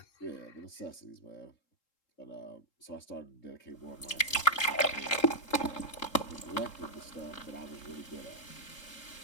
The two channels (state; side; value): late; right; 3.7 ms